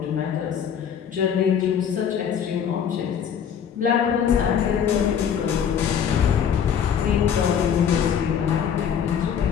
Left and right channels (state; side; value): quieter; right; 8.1 dB